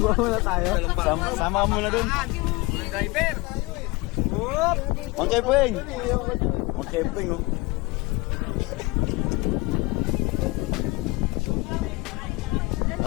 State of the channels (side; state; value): right; quieter; 23.7 dB